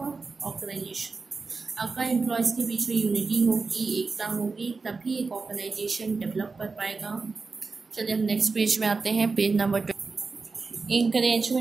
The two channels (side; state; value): left; quieter; 4.3 dB